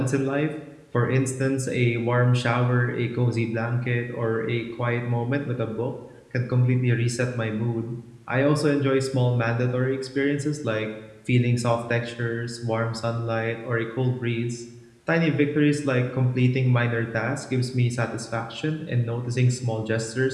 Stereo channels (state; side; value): identical; both; correlation 1.00